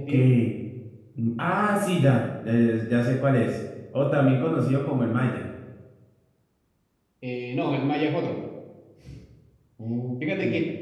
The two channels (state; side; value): identical; both; correlation 1.00